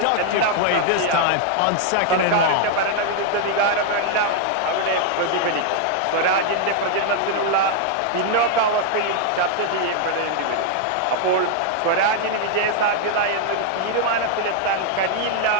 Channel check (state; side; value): different; both; correlation 0.00